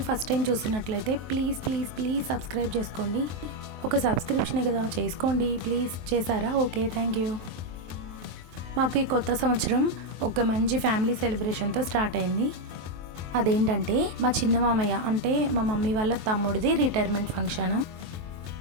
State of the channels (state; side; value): late; left; 23 ms